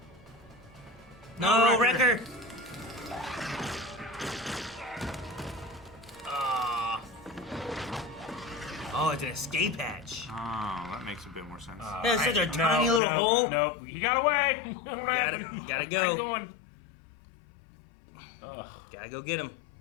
No, Wrecker! Ah. Oh, it's an escape hatch. Oh, that makes a bit more sense. That's such a tiny little hole. No, he got away. What happened? Gotta go. Keep going. Gotta go get him.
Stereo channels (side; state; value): right; drops out; at 13.0 s